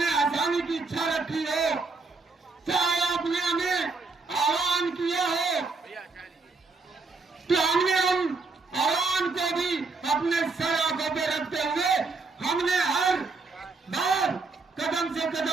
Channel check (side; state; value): left; quieter; 4.0 dB